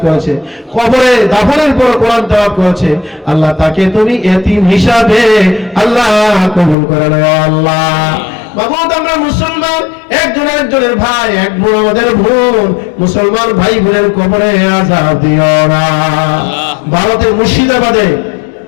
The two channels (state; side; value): drops out; right; at 6.8 s